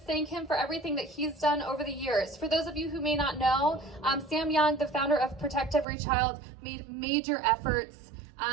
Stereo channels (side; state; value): left; drops out; at 5.9 s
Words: thank him for everything that he's done over the years. For those of you who may not know, Sam Young, the founder of Protect Every Child, made major efforts